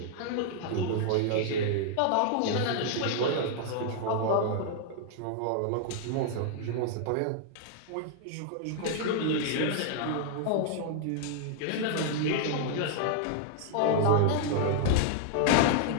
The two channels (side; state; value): both; different; correlation 0.00